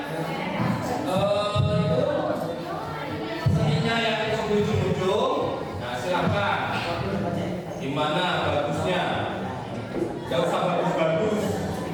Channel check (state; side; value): identical; both; correlation 1.00